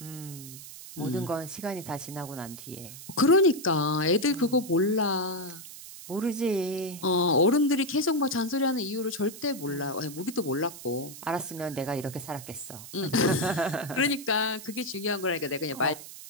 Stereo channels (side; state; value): right; noise; hiss, 14 dB below the sound